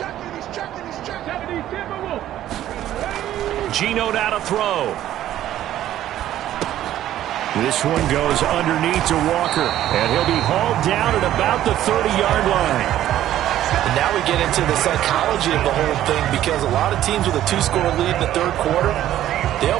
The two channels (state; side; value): quieter; left; 12.6 dB